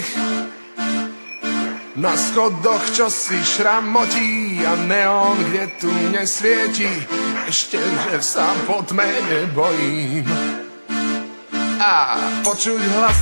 Na schodoch čo si šramotí a neon, kde tu nesvieti, ešte že sa po tme nebojím. A počuť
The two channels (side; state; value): both; inverted; correlation -1.00